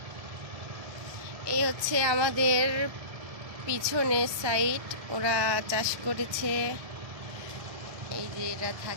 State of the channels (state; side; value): late; left; 1.2 ms